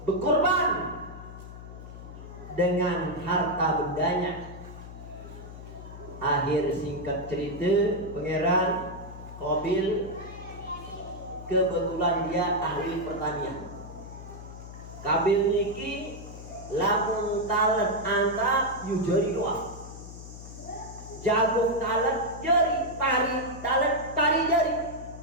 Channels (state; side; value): noise; left; hum, 13 dB below the sound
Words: berkorban dengan harta bendanya. Akhir singkat cerita, pangeran Qabil kebetulan dia ahli pertanian. Qabil niki lamun talet anta yu jari doang. Jagung talet jari, pari talet pari jari.